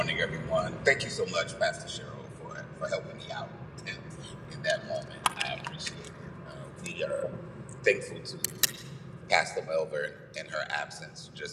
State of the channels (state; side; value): identical; both; correlation 1.00